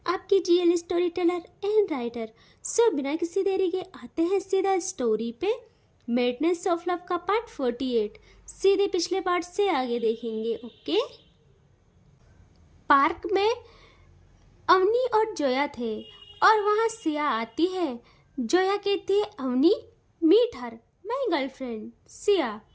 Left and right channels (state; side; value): identical; both; correlation 1.00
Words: आपकी GL story teller and writer. So बिना किसी देरी के आते हैं सीधा स्टोरी पे। मेडनेस ऑफ लव का पार्ट 48 सीधे पिछले पार्ट से आगे देखेंगे। ओके। पार्क में अवनी और जोया थे और वहाँ सिया आती है। जोया कहती है, Avni meet her, my girlfriend Siya.